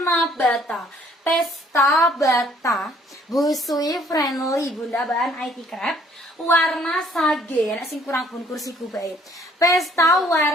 bata. Pesta bata, busui friendly Bunda, bahan IT crepe. Warna sage, sing kurang pun kursiku baik. Pesta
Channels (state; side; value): normal; both; correlation 0.60